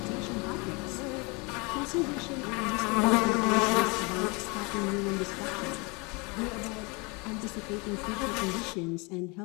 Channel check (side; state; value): right; quieter; 29.2 dB